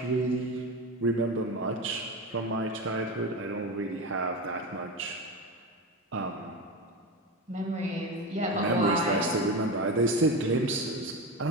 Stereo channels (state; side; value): normal; both; correlation 0.21